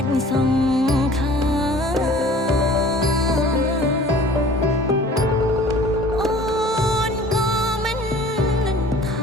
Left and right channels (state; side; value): normal; both; correlation 0.48